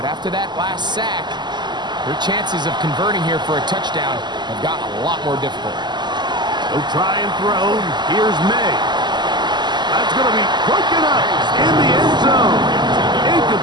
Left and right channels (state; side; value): late; left; 0.21 ms